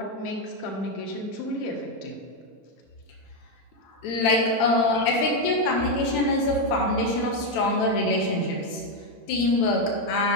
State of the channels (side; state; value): right; late; 8.8 ms